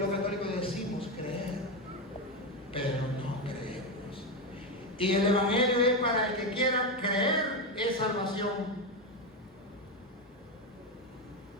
católicos decimos creer, pero no creemos. Y el Evangelio es para el que quiera creer, es salvación.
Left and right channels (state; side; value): normal; both; correlation 0.12